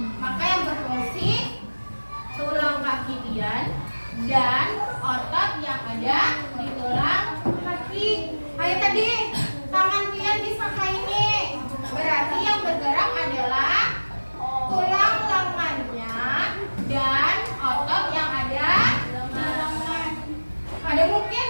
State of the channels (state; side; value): inverted; both; correlation -1.00